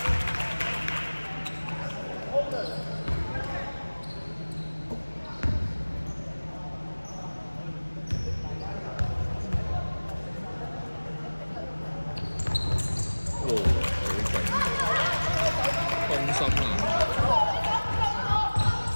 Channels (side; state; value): both; inverted; correlation -1.00